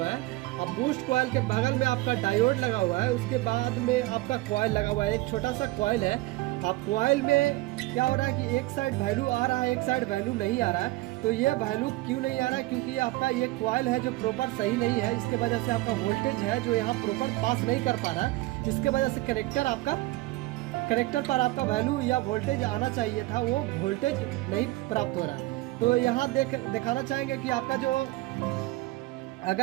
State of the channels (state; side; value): quieter; left; 19.8 dB